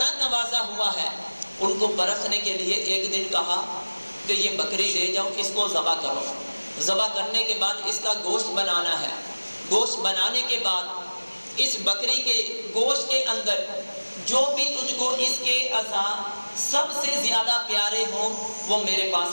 نوازا ہوا ہے۔ ان کو پرکھنے کے لیے ایک دن کہا کہ یہ بکری لے جاؤ، اس کو ذبح کرو، ذبح کرنے کے بعد اس کا گوشت بنانا ہے، گوشت بنانے کے بعد اس بکری کے گوشت کے اندر جو بھی تجھ کو اس کے اعضاء سب سے زیادہ پیارے ہوں وہ میرے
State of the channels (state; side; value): inverted; both; correlation -1.00